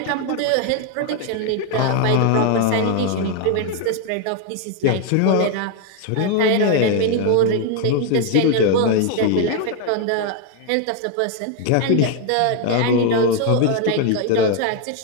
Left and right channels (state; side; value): different; both; correlation 0.00